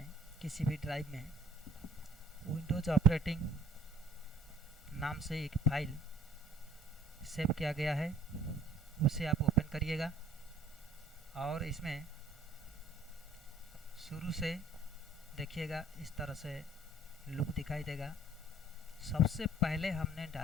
किसी भी ड्राइव में विंडोज़ ऑपरेटिंग नाम से एक फाइल सेव किया गया है, उसे आप ओपन करिएगा और इसमें शुरू से देखिएगा इस तरह से लुक दिखाई देगा। सबसे पहले हमने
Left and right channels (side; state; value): both; normal; correlation 0.55